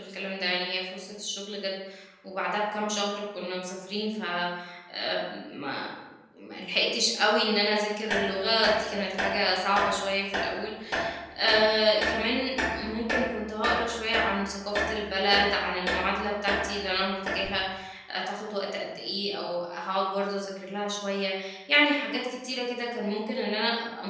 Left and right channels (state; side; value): identical; both; correlation 1.00